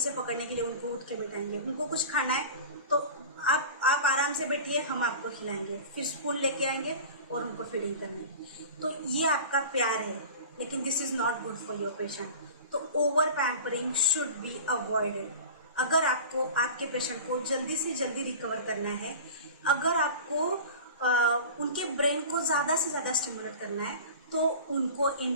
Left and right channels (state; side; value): inverted; both; correlation -0.35